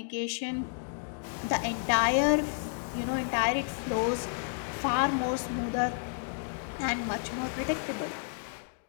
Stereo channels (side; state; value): right; silent; digital silence